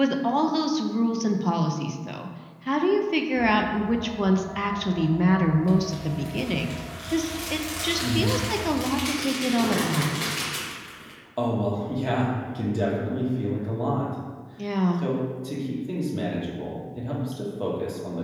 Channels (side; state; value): both; identical; correlation 1.00